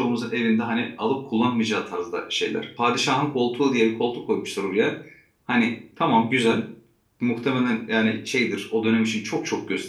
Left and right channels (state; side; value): identical; both; correlation 1.00